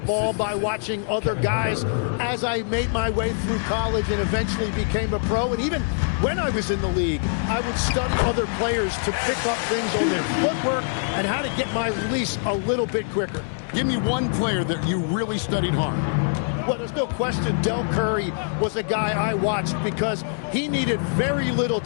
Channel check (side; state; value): right; silent; digital silence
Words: by watching other guys as I made my way through college and eventually became a pro. And even when I was in the league, I would study other players to pick up things on their footwork and how to get my release a little bit quicker. Give me one player that you really studied hard. Well, there's no question Del Curry was a guy I watched because he needed very little